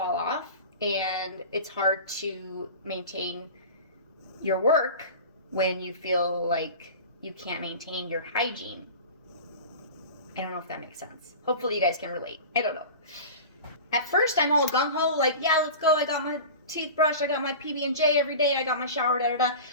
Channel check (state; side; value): inverted; both; correlation -0.34